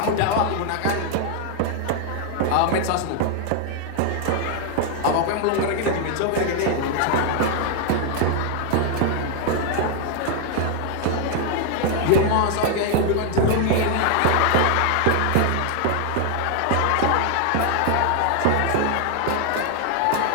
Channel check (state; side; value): different; both; correlation 0.00